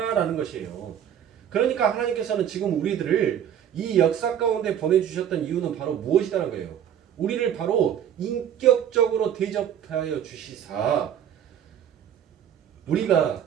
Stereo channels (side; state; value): left; quieter; 9.6 dB